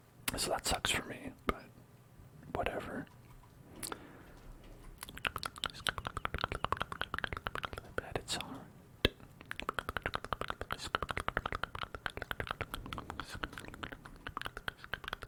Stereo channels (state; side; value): identical; both; correlation 1.00